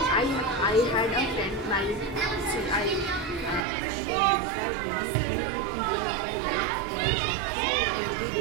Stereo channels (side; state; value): left; drops out; at 3.7 s